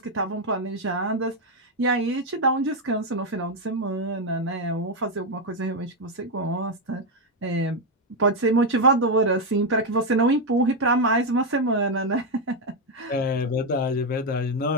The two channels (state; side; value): normal; both; correlation 0.05